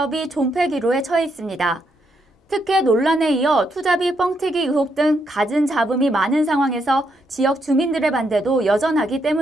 존폐 기로에 처해 있습니다. 특혜 논란에 이어 투자비 뻥튀기 의혹 등 갖은 잡음이 많은 상황에서 지역 주민들의 반대도 여전하기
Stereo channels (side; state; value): both; normal; correlation 0.78